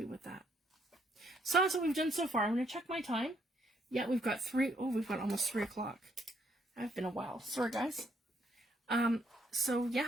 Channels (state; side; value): normal; both; correlation 0.71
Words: with that. So that's what we've done so far. I'm going to check my time. Yeah, we've got we've got almost 3 o'clock. I've been a while. Sorry, guys. So